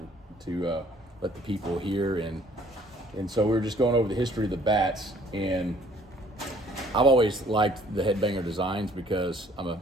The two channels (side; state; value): both; normal; correlation 0.58